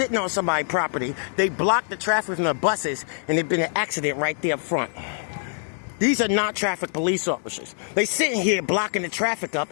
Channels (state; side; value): silent; right; digital silence